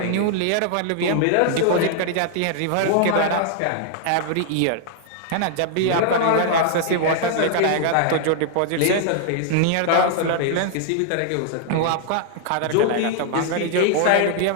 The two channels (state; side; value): different; both; correlation -0.01